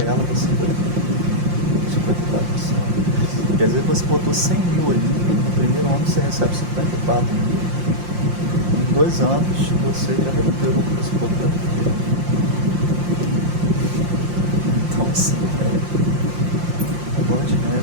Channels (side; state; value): left; late; 5.7 ms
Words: ela, você vai 54%. Quer dizer que você botou 100 mil ali, no primeiro ano você recebe 54 mil. Em 2 anos você já recuperou o que você botou. Então assim, bola de